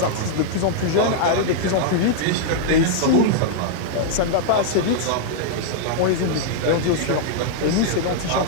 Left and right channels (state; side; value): different; both; correlation -0.01